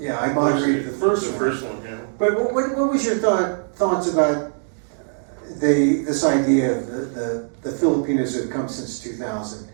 I moderated the first The one. first one, yeah. But what was your thoughts about this idea of the Filipinos who have come since 2000,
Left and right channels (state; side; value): silent; left; digital silence